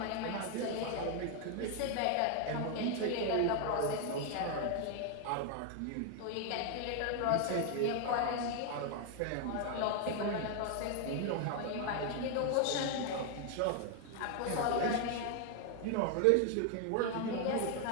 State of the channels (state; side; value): different; both; correlation 0.00